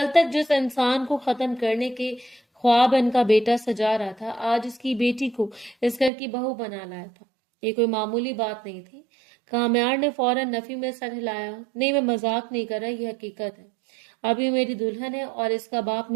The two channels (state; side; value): drops out; left; at 6.1 s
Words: तक जिस इंसान को खत्म करने के ख्वाब इनका बेटा सजा रहा था, आज इसकी बेटी को इस घर की बहू बना लाया था। ये कोई मामूली बात नहीं थी। कामयार ने फौरन नफी में सर हिलाया। नहीं, मैं मजाक नहीं कर रहा, ये हकीकत है। अभी मेरी दुल्हन है और इसका बाप